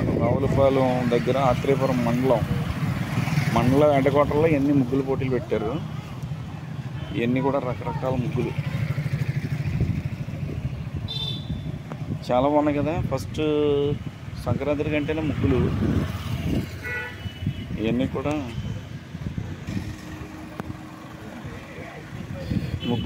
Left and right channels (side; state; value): both; identical; correlation 1.00